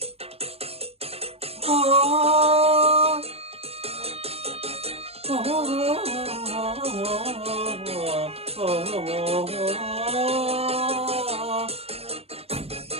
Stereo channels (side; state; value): left; late; 0.29 ms